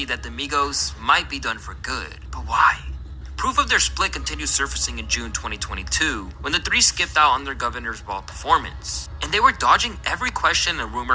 that the Migos might be done for good. But why? Proof of their split continued surfacing in June 2022 when the 3 skipped out on their Governor's Ball performance, and they were dodging every question and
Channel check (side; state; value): both; identical; correlation 1.00